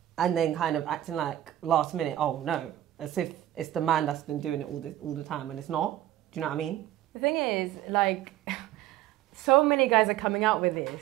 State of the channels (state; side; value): quieter; left; 13.4 dB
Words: and then kind of acting like last minute, oh no, as if it's the man that's been doing it all the time, and it's not. Do you know what I mean? The thing is, like, so many guys are coming out with